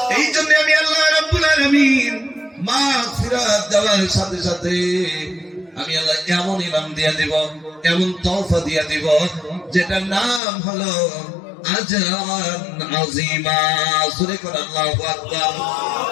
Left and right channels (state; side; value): drops out; right; at 10.4 s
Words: এই জন্য আমি আল্লাহ রাব্বুল আলামিন মাগফিরাত দেওয়ার সাথে সাথে আমি আল্লাহ এমন ইনাম দিয়ে দিব, এমন তওফা দিয়ে দিব, যেটার নাম হলো আজরান আযীমা। সূরা কোন আল্লাহু আকবার।